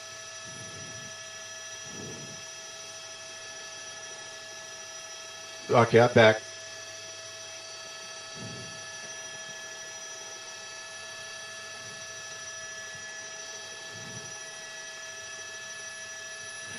Okay, I'm back.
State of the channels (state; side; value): identical; both; correlation 1.00